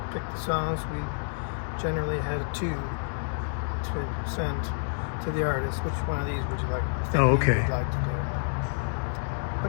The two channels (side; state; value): right; silent; digital silence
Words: picked the songs. We generally had 2 to send to the artist. Which one of these would you like? Oh, okay. Would like to do?